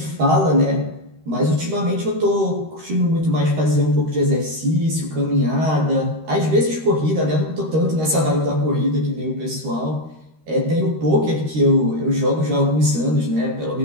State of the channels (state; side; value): late; left; 13 ms